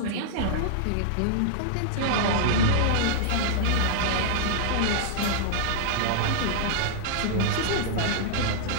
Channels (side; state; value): both; different; correlation -0.01